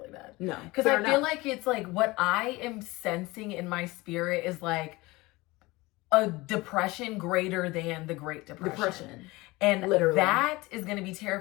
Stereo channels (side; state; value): right; quieter; 21.7 dB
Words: bad. No, because I feel like it's like what I am sensing in my spirit is like a depression greater than the Great Depression. And literally, that is going to be